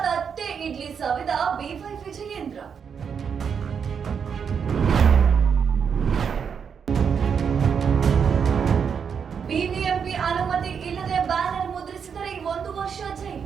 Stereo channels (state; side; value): quieter; left; 6.8 dB